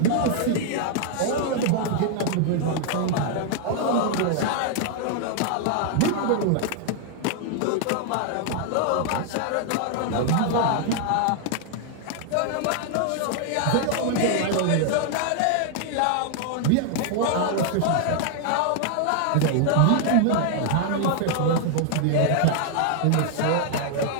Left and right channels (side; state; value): both; different; correlation 0.00